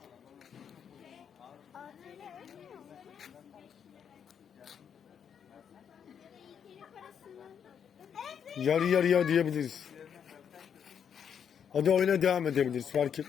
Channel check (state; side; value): quieter; right; 7.9 dB